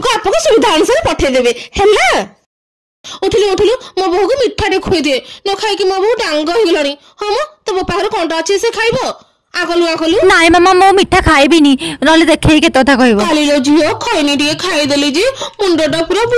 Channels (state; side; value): identical; both; correlation 1.00